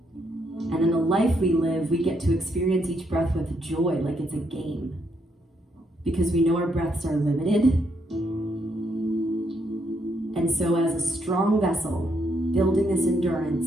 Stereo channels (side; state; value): both; normal; correlation 0.75